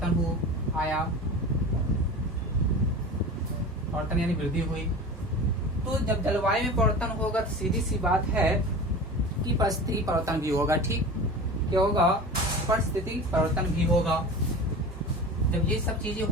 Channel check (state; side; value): normal; both; correlation 0.34